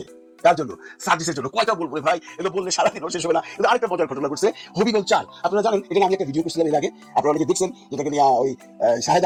তার জন্য সার্ভিসের জন্য কয়টা বলবো ভাই, এগুলো বললে সারাদিন শেষ হবে না। কিন্তু আরেকটা মজার ঘটনা ঘটছে হবিগঞ্জ 4। আপনারা জানেন, এখানে আমি একটা ভিডিও করছিলাম এর আগে, আপনারা অনেকে দেখছেন, যেটাকে নিয়ে ওই শাহেদ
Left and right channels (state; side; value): identical; both; correlation 1.00